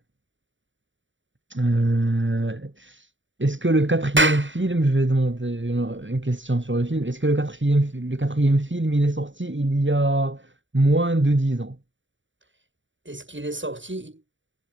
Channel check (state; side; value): late; left; 0.55 ms